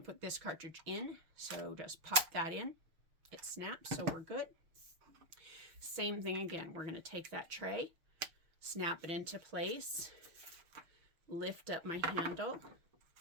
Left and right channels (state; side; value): late; left; 6.5 ms